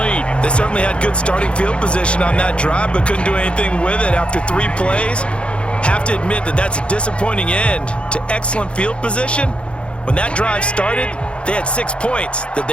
They certainly had good starting field position on that drive, but couldn't do anything with it after 3 plays. Have to admit that that's a disappointing end to excellent field position. When that drive started, they had 6 points that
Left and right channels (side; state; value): right; late; 0.058 ms